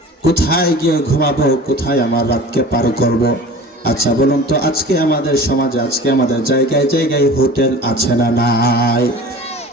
কোথায় গিয়ে ঘুমাবো, কোথায় আমার রাতকে পার করব? আচ্ছা বলুন তো, আজকে আমাদের সমাজে, আজকে আমাদের জায়গায় জায়গায় হোটেল আছে না নাই?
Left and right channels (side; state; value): both; normal; correlation 0.40